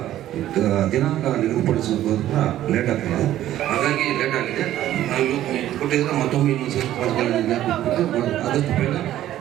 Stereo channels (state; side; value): quieter; left; 13.0 dB